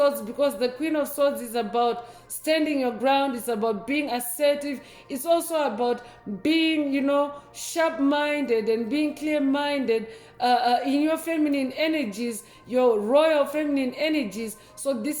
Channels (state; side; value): identical; both; correlation 1.00